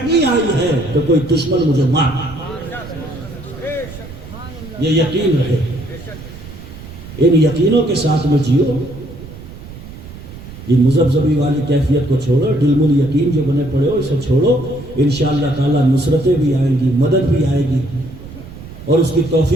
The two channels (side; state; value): right; noise; rumble, 15 dB below the sound